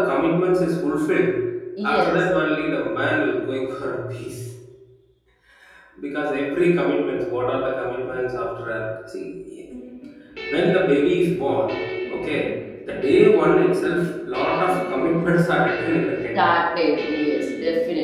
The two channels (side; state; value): both; identical; correlation 1.00